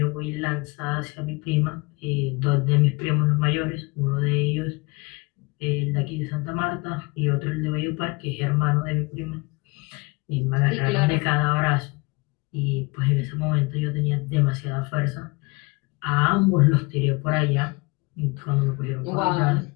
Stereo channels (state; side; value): quieter; right; 26.8 dB